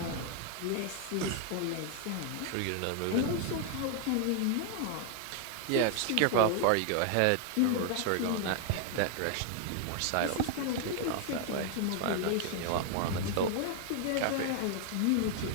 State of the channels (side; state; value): both; different; correlation 0.00